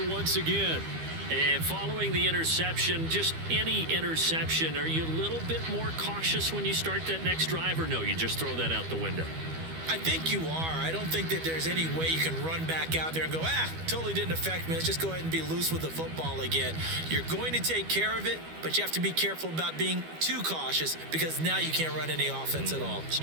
once again. And following the interception, just any interception, are you a little bit more cautious when you start that next drive, or no, you just throw that out the window? I think you are. I don't think that there's any way you can run back out there and go, totally didn't affect me. Let's just go ahead and be loose with the football again. You're going to take care of it, but you have to be careful about being too cautious because now you can't run any offense at all.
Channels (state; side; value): late; left; 12 ms